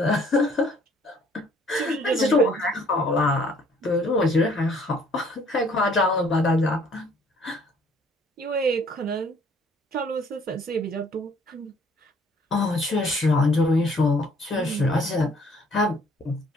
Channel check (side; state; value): both; normal; correlation 0.59